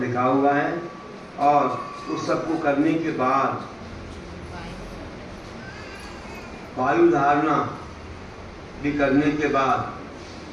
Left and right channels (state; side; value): identical; both; correlation 1.00